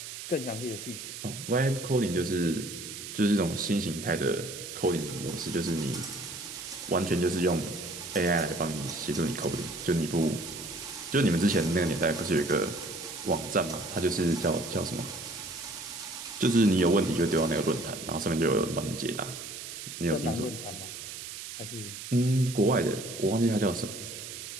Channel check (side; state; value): right; noise; hiss, 10 dB below the sound